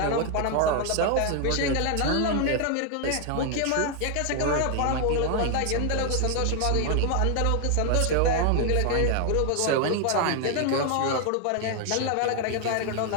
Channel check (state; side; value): different; both; correlation 0.00